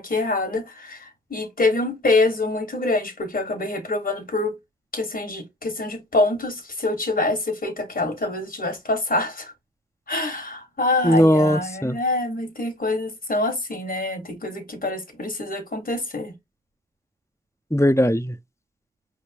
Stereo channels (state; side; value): normal; both; correlation 0.49